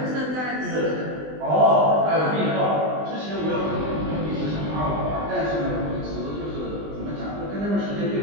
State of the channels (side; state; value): left; late; 20 ms